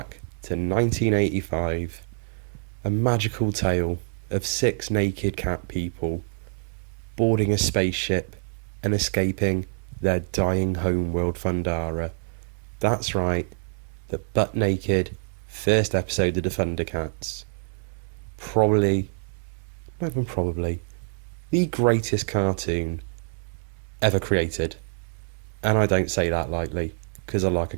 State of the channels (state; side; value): silent; left; 61 dB below the other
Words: to 1985. A magical tale of six naked cat people boarding a spaceship and escaping their dying homeworld Thundara. That's right, the butt naked first episode of the Thundercats. Probably, not even probably, the greatest cartoon ever created. And I don't say that lightly, because I like